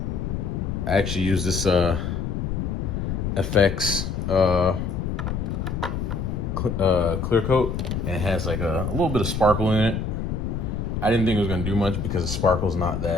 I actually use this FX clear coat, and it has like a little bit of sparkle in it. I didn't think it was gonna do much because the sparkle's not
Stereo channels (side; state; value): left; noise; rumble, 2 dB below the sound